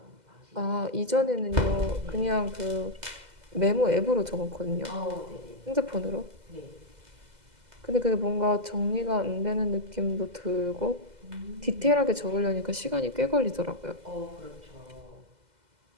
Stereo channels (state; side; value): late; left; 2.0 ms